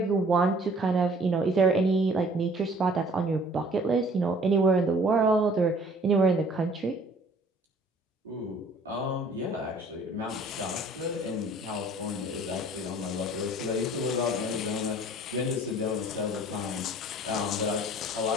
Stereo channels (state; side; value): normal; both; correlation 0.54